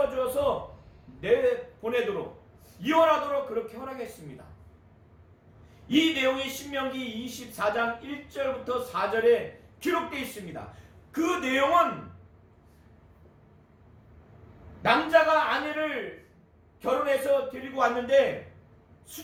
내보내도록, 이혼하도록 그렇게 허락했습니다. 이 내용이 신명기 24장 1절부터 4절에 기록되어 있습니다. 그 내용은 남자가 아내를 결혼해서 데리고 왔는데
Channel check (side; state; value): both; identical; correlation 1.00